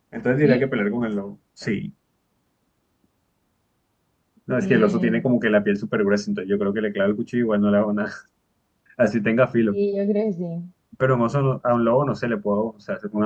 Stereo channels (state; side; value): identical; both; correlation 1.00